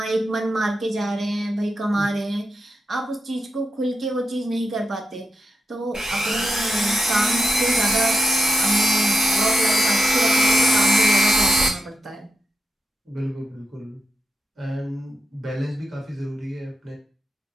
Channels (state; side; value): normal; both; correlation 0.89